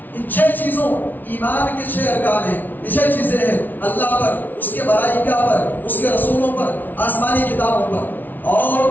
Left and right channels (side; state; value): right; late; 0.084 ms